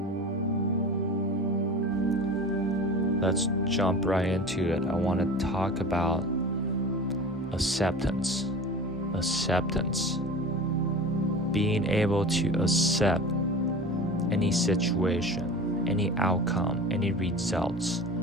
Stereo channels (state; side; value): normal; both; correlation 0.35